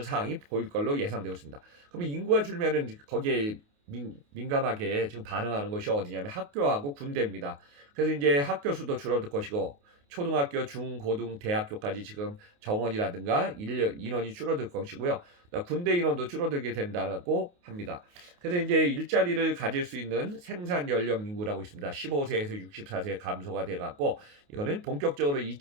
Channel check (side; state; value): left; late; 28 ms